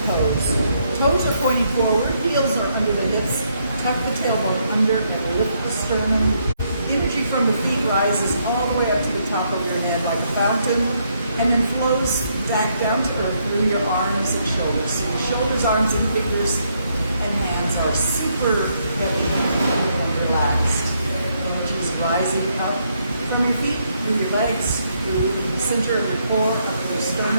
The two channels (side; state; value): both; inverted; correlation -0.75